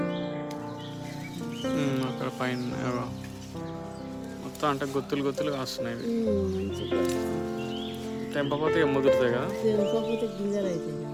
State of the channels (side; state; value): both; identical; correlation 1.00